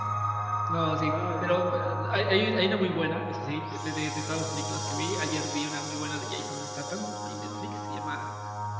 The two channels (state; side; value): identical; both; correlation 1.00